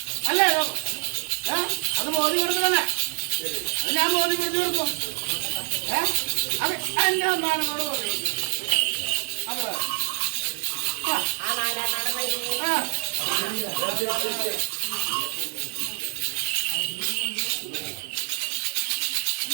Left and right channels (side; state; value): left; silent; 61 dB below the other